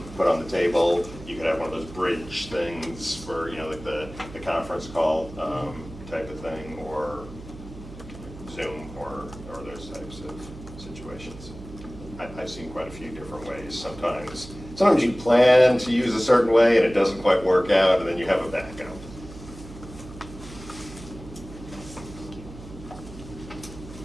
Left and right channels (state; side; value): noise; right; hum, 15 dB below the sound